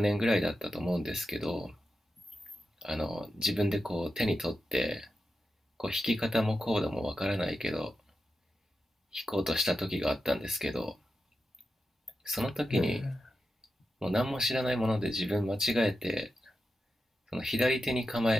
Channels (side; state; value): both; normal; correlation 0.90